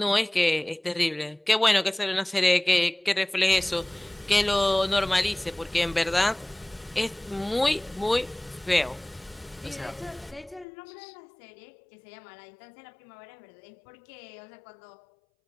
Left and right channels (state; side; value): drops out; right; at 10.7 s